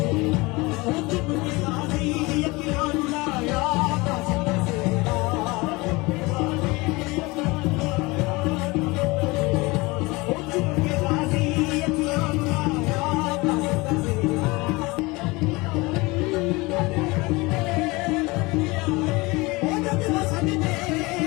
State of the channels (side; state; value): right; quieter; 23.8 dB